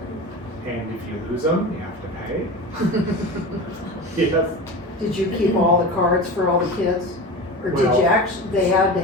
and if you lose them, you have to pay. Yes, Did you keep all the cards for all the kids? Or did Well, you actually, they had to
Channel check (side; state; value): both; normal; correlation 0.29